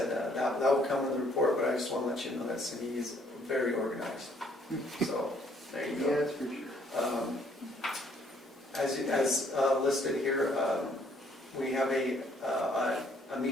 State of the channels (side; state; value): both; normal; correlation 0.65